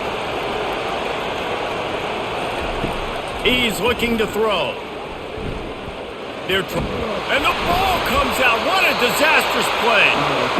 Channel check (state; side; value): identical; both; correlation 1.00